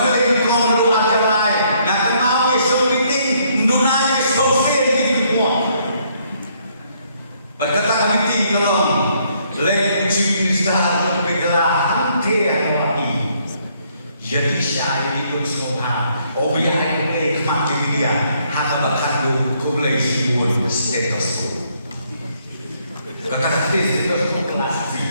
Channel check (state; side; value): inverted; both; correlation -0.69